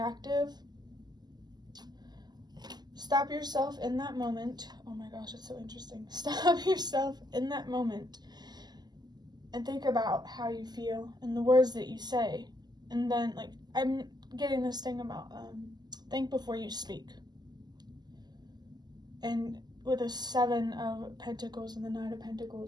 stop yourself in that moment. Oh my gosh, it's so interesting. Stop yourself in that moment and think about how you feel and the words that you say. And then, like, I'm getting this thing about think before you speak. And with the Seven of Pentacles and the Knight of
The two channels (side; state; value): left; late; 0.20 ms